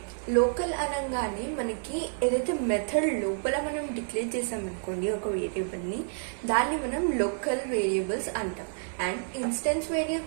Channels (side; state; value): left; silent; digital silence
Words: local అనగానే మనకి ఏదైతే method లోపల మనం డిక్లేర్ చేసామనుకోండి ఒక వేరియబుల్ని, దాన్ని మనం లోకల్ వేరియబుల్స్ అంటాం. అండ్ ఇన్స్టెన్స్